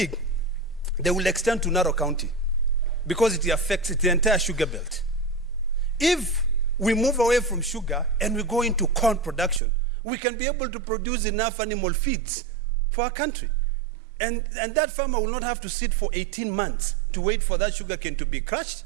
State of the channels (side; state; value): left; drops out; at 9.6 s